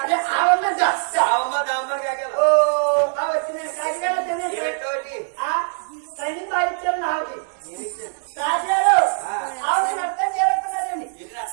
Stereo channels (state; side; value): silent; left; digital silence